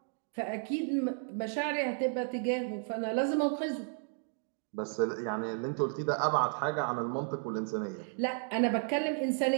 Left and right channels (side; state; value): left; silent; 56 dB below the other